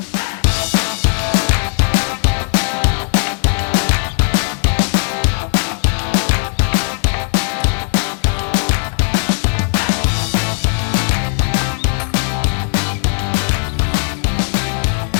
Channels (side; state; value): right; silent; 64 dB below the other